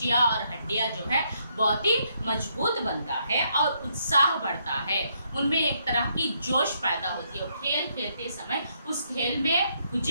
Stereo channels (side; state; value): both; inverted; correlation -0.74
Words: और हड्डियां जो है बहुत ही मजबूत बनता है और उत्साह बढ़ता है. उनमें एक तरह की जोश पैदा होती है. खेल खेलते समय उस खेल में